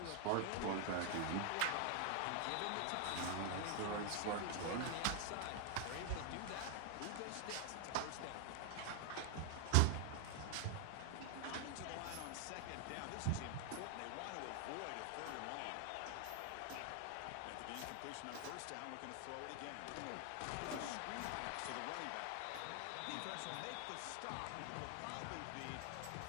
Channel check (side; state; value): both; different; correlation 0.00